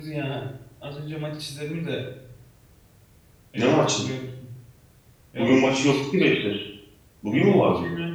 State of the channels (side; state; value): both; identical; correlation 1.00